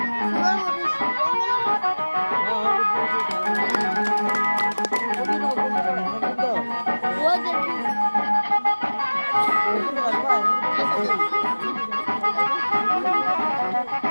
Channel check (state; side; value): inverted; both; correlation -1.00